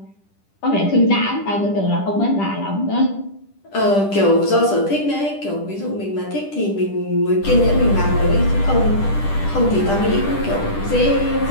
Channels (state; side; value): late; right; 10 ms